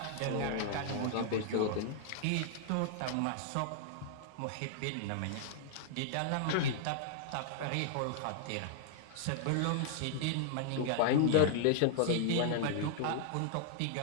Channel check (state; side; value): different; both; correlation -0.01